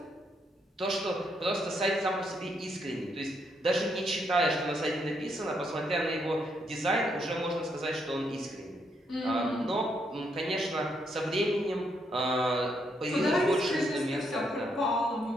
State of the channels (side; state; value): both; normal; correlation 0.76